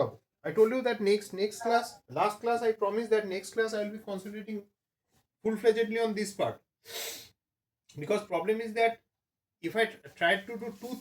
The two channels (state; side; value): identical; both; correlation 1.00